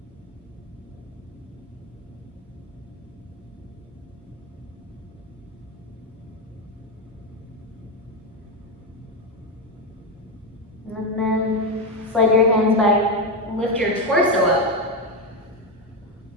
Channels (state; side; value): normal; both; correlation 0.10